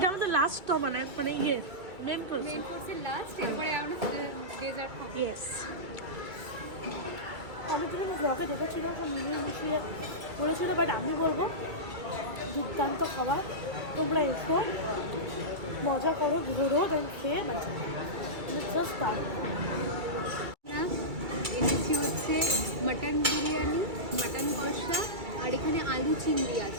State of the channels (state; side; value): late; left; 2.4 ms